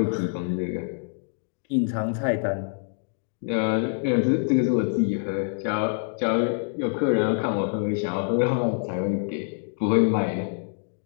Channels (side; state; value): right; silent; digital silence